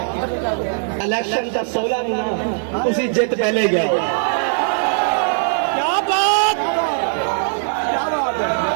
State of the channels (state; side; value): silent; left; digital silence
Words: इलेक्शन का 16 महीना उसी जित पहले गया। क्या बात